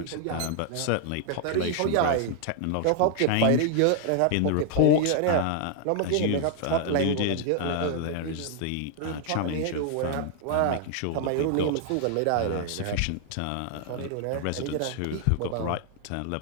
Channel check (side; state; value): both; different; correlation 0.00